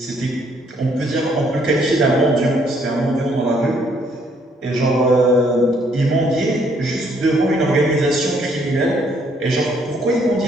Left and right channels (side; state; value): both; normal; correlation 0.67